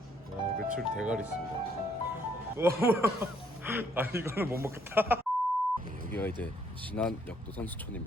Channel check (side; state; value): both; normal; correlation 0.68